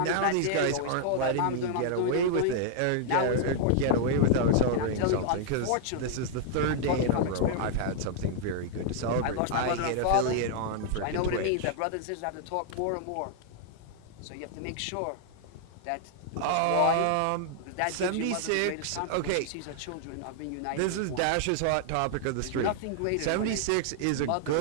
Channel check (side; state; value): both; different; correlation -0.01